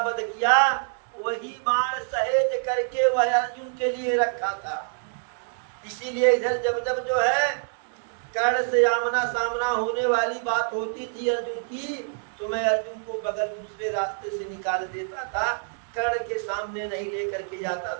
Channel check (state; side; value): silent; left; digital silence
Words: वध किया, वही बाण सहेज करके वह अर्जुन के लिए रखा था। इसीलिए इधर जब जब जो है कर्ण से आमना सामना होने वाली बात होती थी अर्जुन की, तो मैं अर्जुन को बगल दूसरे रास्ते से निकाल देता था, कर्ण के सामने नहीं लेकर के जाता